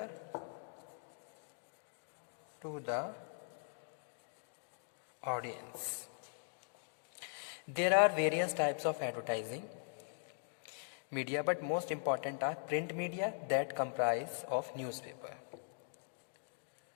to the audience. There are various types of advertising media, but most important are print media that comprise of newspaper.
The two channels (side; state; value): right; silent; digital silence